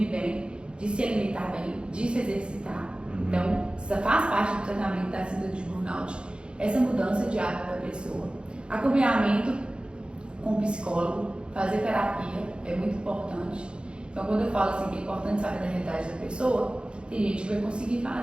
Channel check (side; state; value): left; late; 0.054 ms